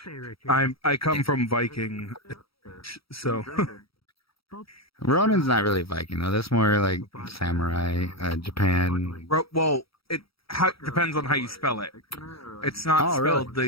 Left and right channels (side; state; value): right; late; 0.76 ms